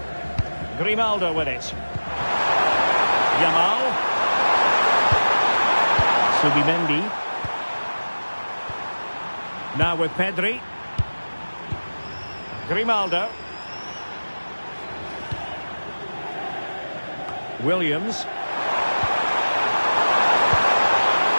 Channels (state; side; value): inverted; both; correlation -1.00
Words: Grimaldo with it. Yamal. Subimendi. Now with Pedri. Grimaldo. Williams.